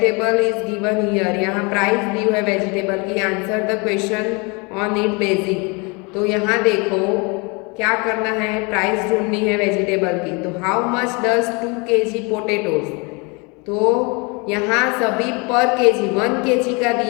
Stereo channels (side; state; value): right; quieter; 30.0 dB